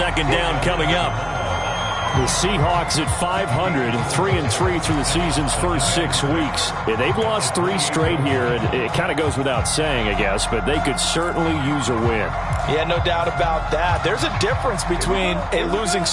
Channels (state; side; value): identical; both; correlation 1.00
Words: down coming up. The Seahawks at 500, 3-3 through the season's first 6 weeks. Yeah, they've lost 3 straight here, and it kind of goes without saying, I guess, but they could certainly use a win. Yeah, no doubt about that. There's a difference between a losing